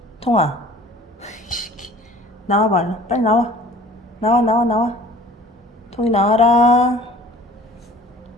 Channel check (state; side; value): normal; both; correlation 0.48